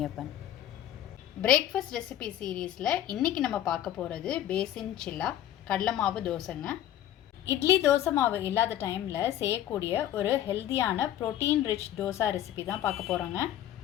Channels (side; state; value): right; quieter; 11.9 dB